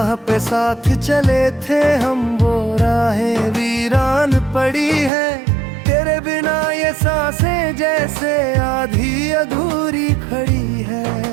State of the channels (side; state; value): left; drops out; at 5.1 s